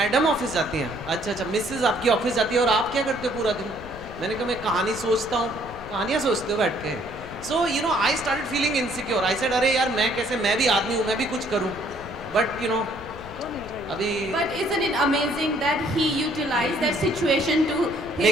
ऑफिस जाती हैं. अच्छा मिसेज आपकी ऑफिस जाती है और आप क्या करते हो पूरा दिन? मैंने कहा मैं कहानी सोचता हूँ. कहानियाँ सोचते हो बैठ के? So I started feeling insecure. I said अरे यार मैं भी आदमी हूँ, मैं भी कुछ करूँ. But अभी. But isn't it amazing that he utilized that situation to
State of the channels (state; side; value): noise; left; rumble, 16 dB below the sound